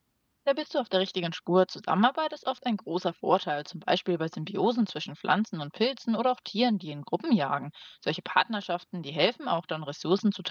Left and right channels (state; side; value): identical; both; correlation 1.00